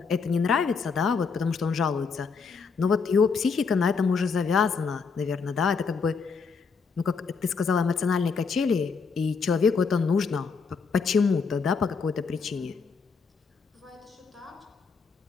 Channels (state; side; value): quieter; right; 5.3 dB